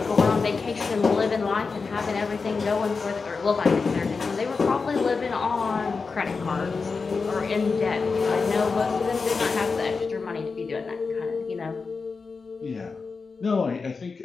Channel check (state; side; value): quieter; right; 4.6 dB